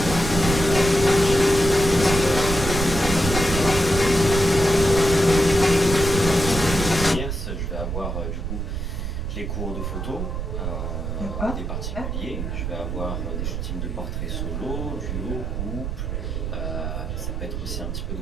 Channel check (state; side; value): noise; right; rumble, 3 dB below the sound